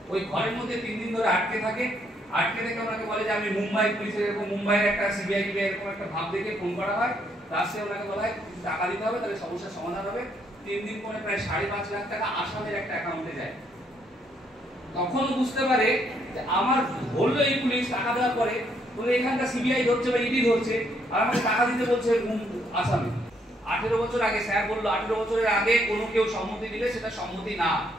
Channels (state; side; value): normal; both; correlation 0.71